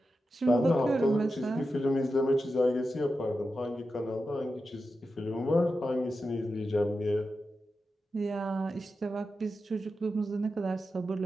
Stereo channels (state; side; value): normal; both; correlation 0.90